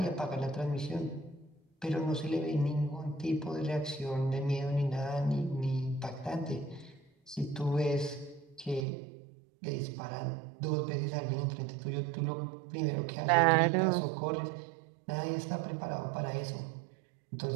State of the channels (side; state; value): left; drops out; at 8.8 s